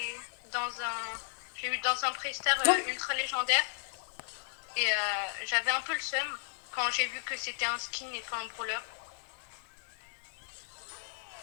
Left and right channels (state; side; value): silent; right; digital silence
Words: j'ai eu dans un prestar Non. ultra légendaire. Et j'avais un peu le seum quand j'ai vu que c'était un skin et pas un brawler.